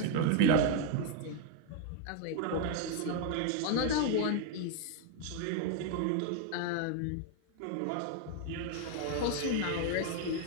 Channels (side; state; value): both; different; correlation 0.01